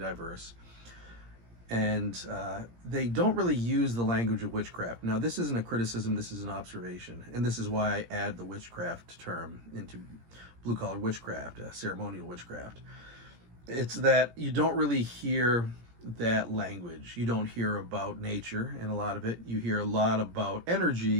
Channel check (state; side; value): late; left; 17 ms